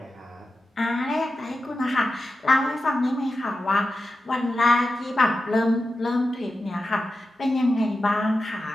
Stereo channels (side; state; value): both; normal; correlation 0.91